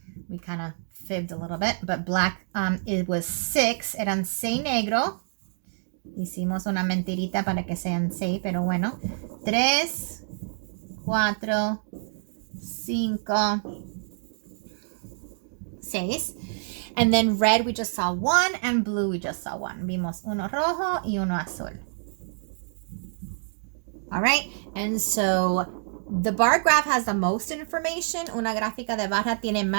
we kind of fibbed a little bit, but black, it was 6, eran 6 negro. Hicimos una mentirita para que sean 6, pero bueno. 3, 4, 5, 6. And then red, we just saw 1, and blue, we just saw 1. Vimos uno rojo y uno azul. All right, and so The bar graph has the most information. Una gráfica de barra tiene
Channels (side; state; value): left; silent; digital silence